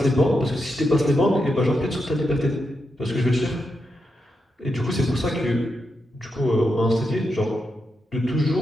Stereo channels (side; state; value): both; normal; correlation 0.85